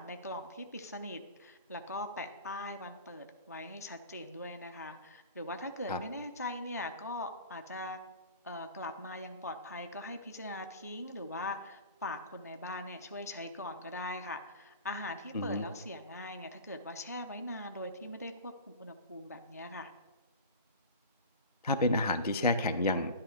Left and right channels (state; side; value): inverted; both; correlation -0.36